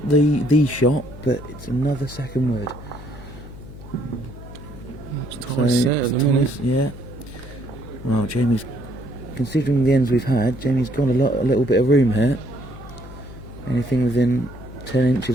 the shot, but it's another second word. It's tight set at the minute. Yeah. Well, Jamie's, considering the ends we've had, Jamie's got a little bit of room here. Anything within 10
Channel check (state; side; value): noise; left; hum, 15 dB below the sound